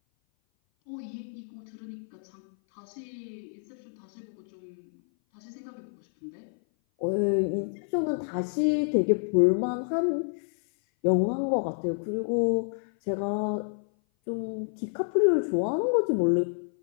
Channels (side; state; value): right; silent; 56 dB below the other